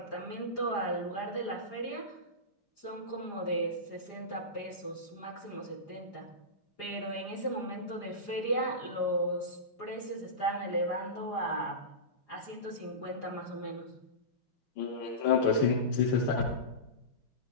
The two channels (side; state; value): right; late; 4.9 ms